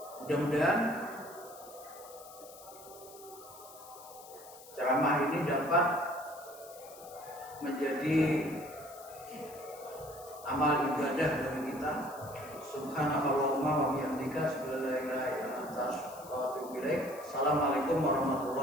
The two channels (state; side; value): noise; left; hiss, 19 dB below the sound